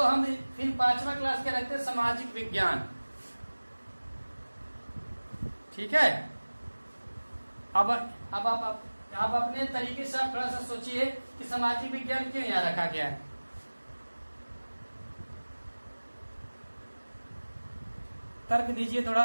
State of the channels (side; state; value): both; inverted; correlation -1.00